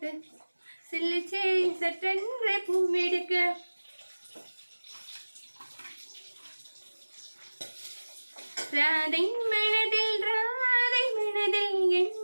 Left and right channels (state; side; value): inverted; both; correlation -1.00